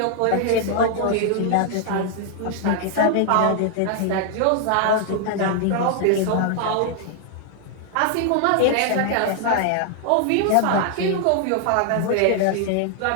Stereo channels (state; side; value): different; both; correlation 0.00